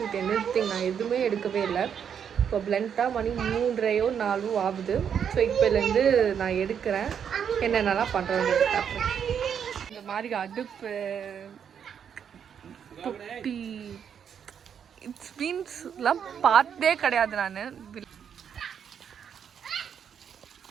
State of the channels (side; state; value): left; quieter; 7.9 dB